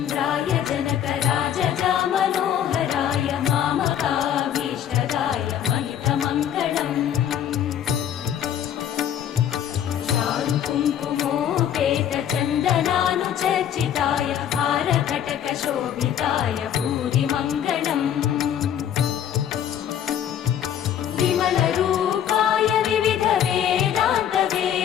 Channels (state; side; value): quieter; right; 9.9 dB